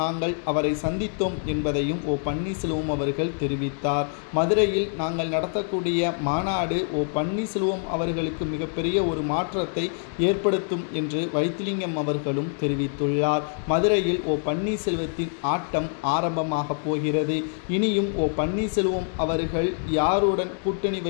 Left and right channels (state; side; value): silent; right; 57 dB below the other